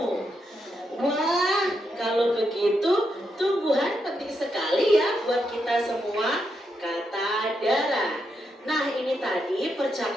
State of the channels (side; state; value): both; normal; correlation 0.82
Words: Wah, kalau begitu tumbuhan penting sekali ya buat kita semua, kata Dara. Nah, ini tadi